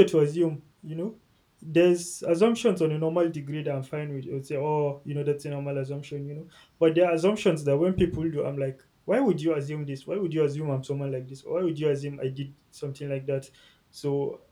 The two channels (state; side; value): identical; both; correlation 1.00